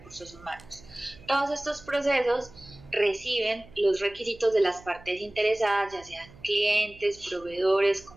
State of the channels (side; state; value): right; noise; hum, 22 dB below the sound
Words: humanos. Todos estos procesos reciben los requisitos de las partes interesadas, ya sean clientes, proveedores,